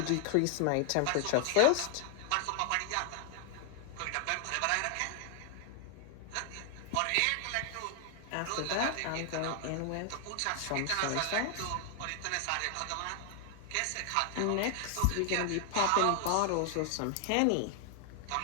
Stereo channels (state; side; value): different; both; correlation 0.00